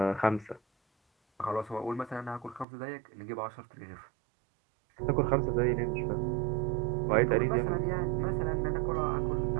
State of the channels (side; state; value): left; drops out; at 2.7 s